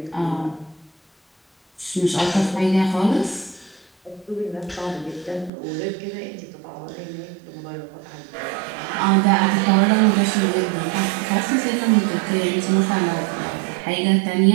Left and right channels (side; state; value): left; drops out; at 5.5 s